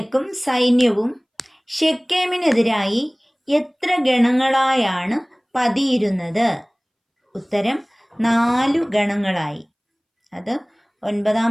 സൈന്യവും ശെഖേമിനെതിരായി എത്ര ഗണങ്ങളായാണ് പതിയിരുന്നത്? ഉത്തരം 4 ഗണങ്ങളായി. അത്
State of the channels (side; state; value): both; identical; correlation 1.00